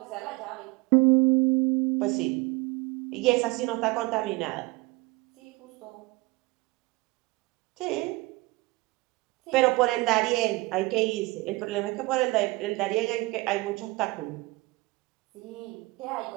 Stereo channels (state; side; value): quieter; left; 22.7 dB